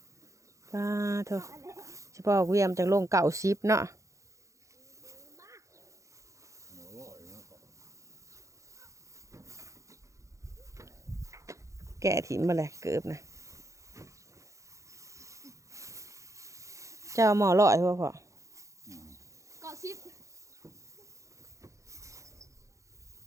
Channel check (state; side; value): late; left; 0.15 ms